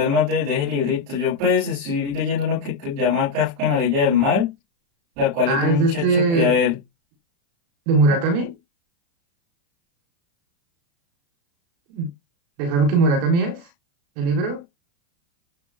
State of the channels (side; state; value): left; late; 35 ms